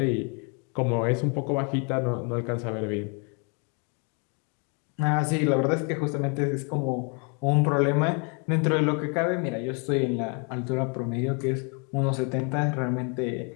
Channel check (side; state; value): right; quieter; 36.7 dB